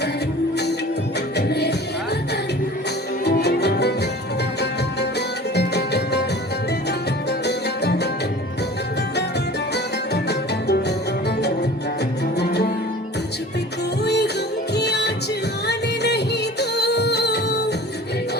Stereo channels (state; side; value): normal; both; correlation 0.42